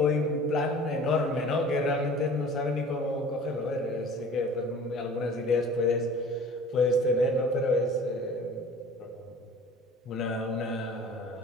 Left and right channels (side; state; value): both; normal; correlation 0.45